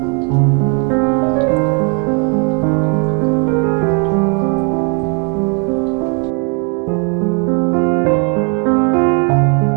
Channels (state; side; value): quieter; left; 36.9 dB